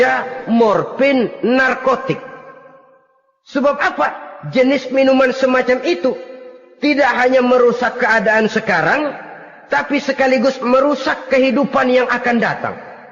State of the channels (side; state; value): both; identical; correlation 1.00